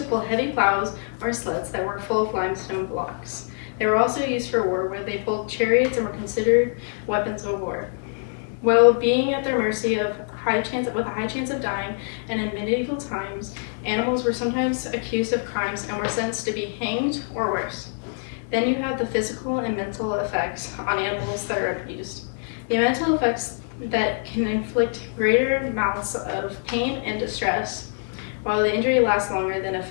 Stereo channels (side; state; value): right; silent; 62 dB below the other